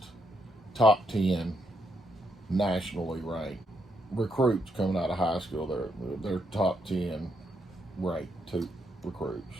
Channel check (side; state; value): both; normal; correlation 0.77